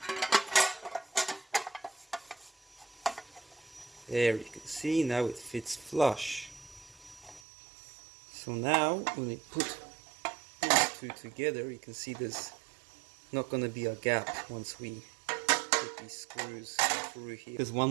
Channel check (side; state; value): left; drops out; at 7.4 s